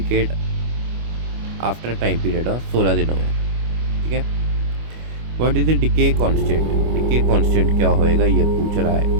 after time period of 16 दिनों में, ठीक है। What is the decay constant, decay constant क्या होएगा ये पूछ रहा है।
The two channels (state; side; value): late; left; 25 ms